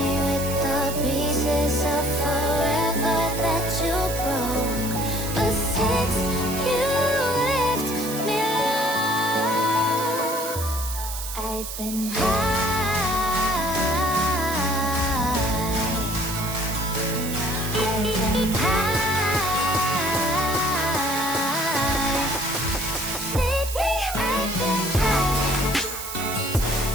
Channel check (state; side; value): noise; right; hiss, 8 dB below the sound